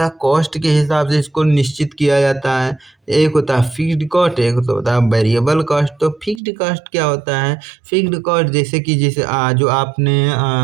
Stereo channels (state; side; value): drops out; left; at 6.4 s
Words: है कॉस्ट के हिसाब से इसको निश्चित किया जाता है। एक होता है फिक्स्ड कॉस्ट, एक तो होता है वेरिएबल कॉस्ट। तो फिक्स्ड कॉस्ट क्या होता है? फिक्स्ड कॉस्ट जैसे कि जो आपने